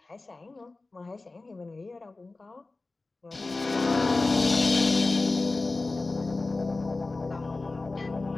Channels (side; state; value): right; quieter; 3.4 dB